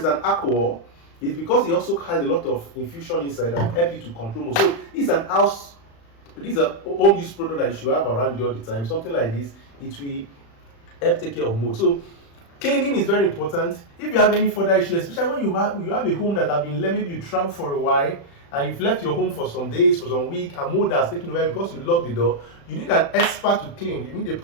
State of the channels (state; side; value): late; right; 35 ms